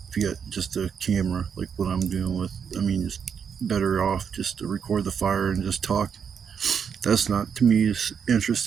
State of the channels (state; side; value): quieter; left; 7.0 dB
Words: if you got just a camera like what I'm doing with. I mean, it's better off just to record the fire and just talk. That's not, to me, as